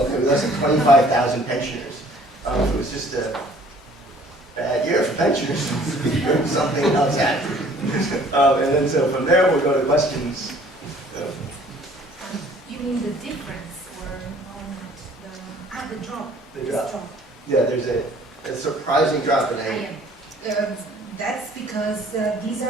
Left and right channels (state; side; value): normal; both; correlation 0.55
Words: we lost 25,000 pensioners. It was just a bad year for pensioners. Something else happened. And then so from there we'll go to questions. You mean the difference or the drop? The drop. Yeah, there's a surprising drop in That's because these